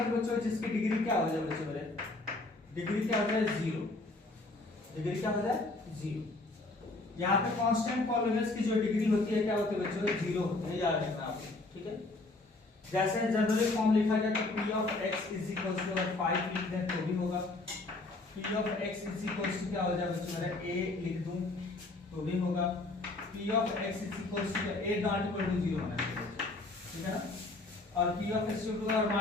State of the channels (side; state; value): right; quieter; 3.1 dB